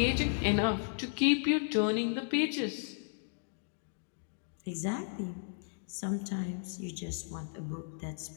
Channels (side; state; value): right; silent; digital silence